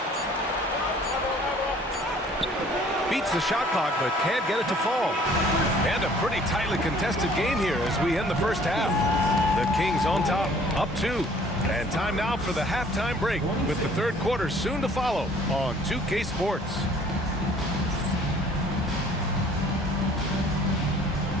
Beats the shot clock, but can't get it to fall. And a pretty tightly contested game here as we end the first half. The Kings on top, up 2. And time now for the halftime break, with the third quarter soon to follow on 2K Sports.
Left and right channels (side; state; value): both; normal; correlation 0.55